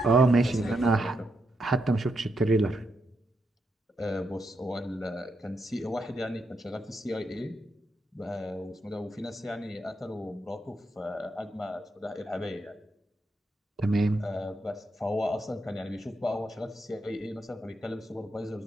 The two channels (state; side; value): normal; both; correlation 0.82